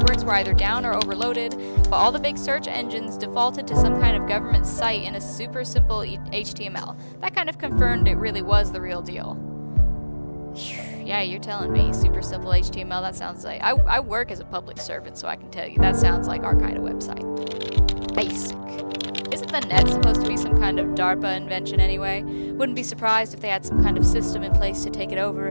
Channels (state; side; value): inverted; both; correlation -1.00